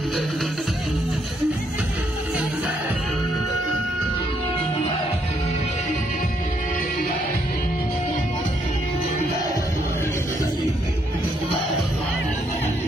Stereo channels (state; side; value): normal; both; correlation 0.73